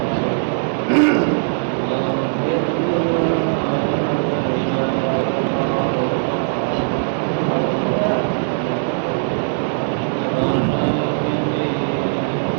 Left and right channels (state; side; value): silent; left; 66 dB below the other